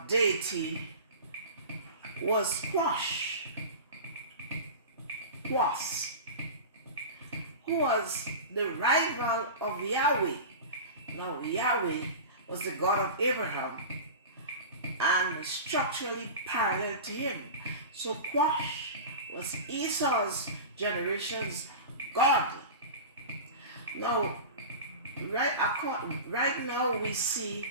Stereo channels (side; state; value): both; inverted; correlation -0.30